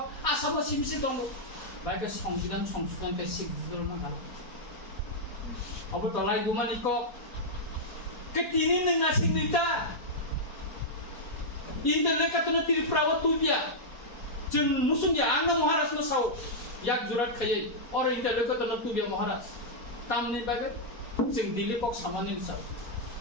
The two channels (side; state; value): right; late; 4.2 ms